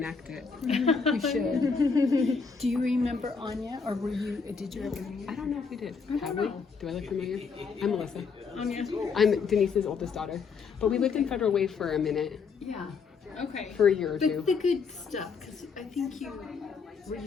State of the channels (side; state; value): right; quieter; 5.3 dB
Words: it. You should. Do you remember Anya, or did you ever meet? I don't know if we did. Have we? Do I look familiar? I'm Melissa. Anya? I'm Denise's oldest daughter. But we lived in Federal Way for a minute, Yeah. Okay. for a year or two. But the good stuff, because I think were